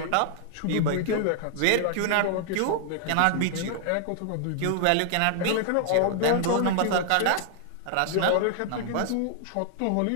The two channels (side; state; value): both; different; correlation 0.00